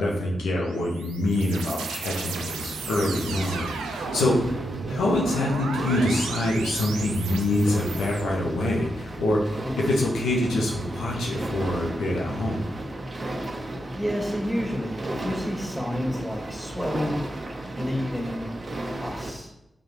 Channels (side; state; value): both; normal; correlation 0.83